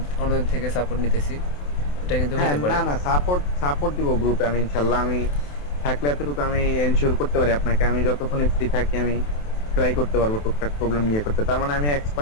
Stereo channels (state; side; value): late; right; 28 ms